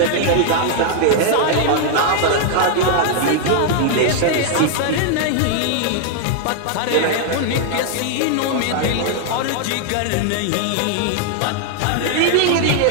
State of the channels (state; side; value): different; both; correlation 0.00